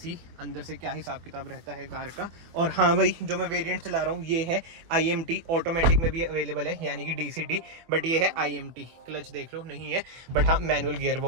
अंदर से क्या हिसाब किताब रहता है कार का। और हाँ भाई, जो मैं वेरिएंट चला रहा हूँ ये है IMT, ऑटोमेटिक में भी अवेलेबल है यानी कि DCT, बट ये है IMT। क्लच देख लो नहीं है, बट हाँ मैनुअल गियर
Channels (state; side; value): late; left; 24 ms